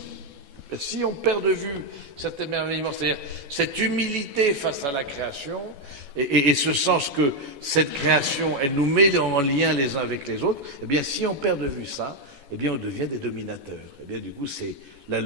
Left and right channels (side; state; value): left; late; 14 ms